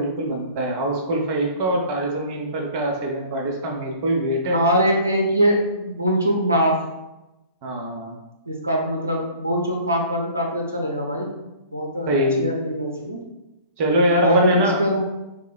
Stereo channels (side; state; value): both; inverted; correlation -0.50